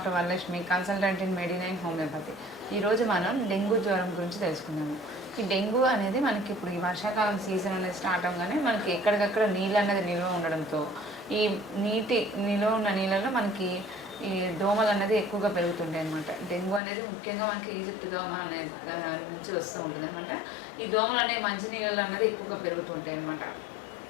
Varalakshmi, consultant in Medinine homeopathy. ఈరోజు మనం డెంగ్యూ జ్వరం గురించి తెలుసుకుందాము. ఈ డెంగ్యూ అనేది మనకి ఇప్పుడు ఈ వర్షాకాలం సీజన్ అనేది స్టార్ట్ అవ్వగానే మనకి ఎక్కడికక్కడ నీళ్ళు అనేది నిల్వ ఉండడంతో ఈ నిల్వ ఉన్న నీళ్ళలో మనకి ఈ దోమలు అనేది ఎక్కువగా పెరుగుతుంటాయి అనమాట. డెంగ్యూ అనేది ముఖ్యంగా మనకి ఈజిప్ట్ దోమ అనే నుంచి వస్తూ ఉంటుంది అనమాట. ఈ దోమలు అనేవి మంచి నీళ్ళు అనేది ఎక్కువగా పెరుగుతుంటాయి అనమాట.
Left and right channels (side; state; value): right; drops out; at 16.8 s